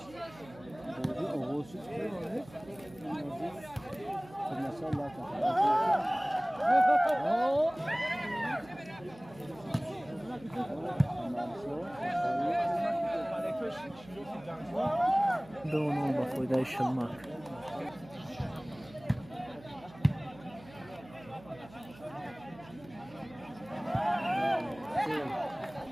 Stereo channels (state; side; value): noise; right; hum, 21 dB below the sound